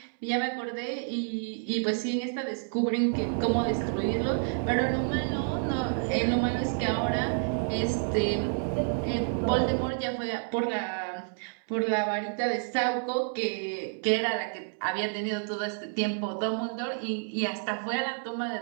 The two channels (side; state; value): left; silent; 58 dB below the other